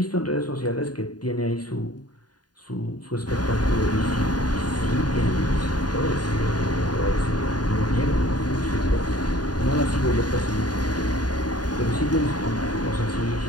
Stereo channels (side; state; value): right; late; 0.70 ms